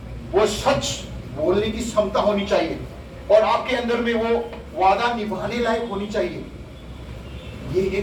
वो सच बोलने की क्षमता होनी चाहिए, और आपके अंदर में वो वादा निभाने लायक होनी चाहिए। ये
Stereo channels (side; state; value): both; identical; correlation 1.00